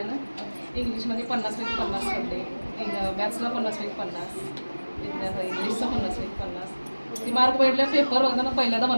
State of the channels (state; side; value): inverted; both; correlation -1.00